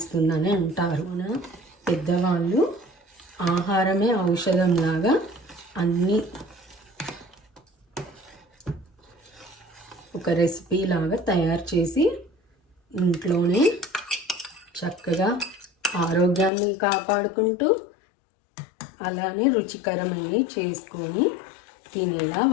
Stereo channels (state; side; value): drops out; right; at 16.5 s